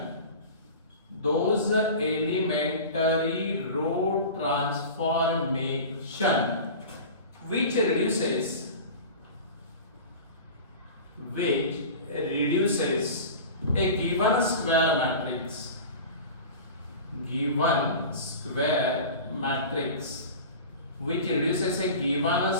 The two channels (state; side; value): inverted; both; correlation -0.35